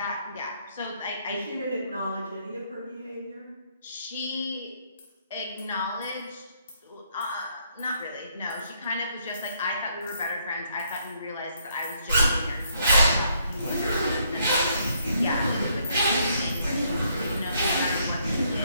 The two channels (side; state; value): both; inverted; correlation -0.71